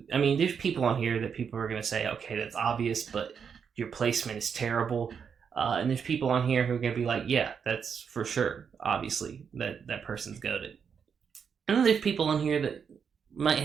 I mean, there's people on here that people are going to say, okay, that's obvious, but your placement is terrible. And there's people on here who are going to be like, yeah, that's for sure, obviously, that person's goated. And then there's people on here that might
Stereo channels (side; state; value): left; quieter; 6.8 dB